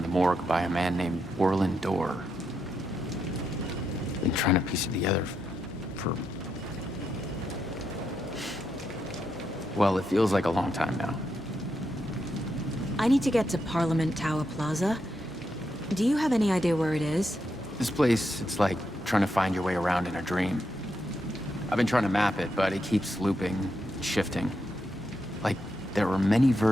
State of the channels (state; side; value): normal; both; correlation 0.82